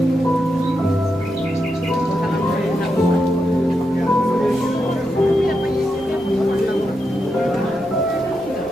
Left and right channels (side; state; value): right; noise; rumble, 26 dB below the sound